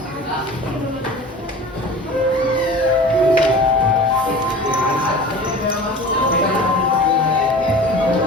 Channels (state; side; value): normal; both; correlation 0.38